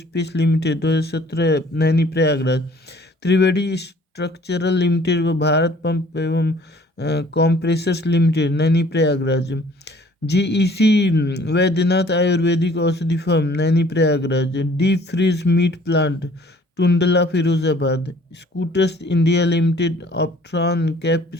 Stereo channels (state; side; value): normal; both; correlation 0.55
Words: limited 2017 Naini, Prayagraj. Triveni structural limited व भारत पंप एवं compressors limited Naini, Prayagraj. GEC Baidyanath Ayurvedic औषधि firm Naini, Prayagraj. Deep freeze meat plant Tundla, Firozabad. Scooters India limited, Optron